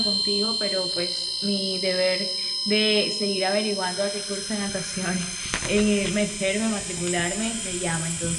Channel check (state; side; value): identical; both; correlation 1.00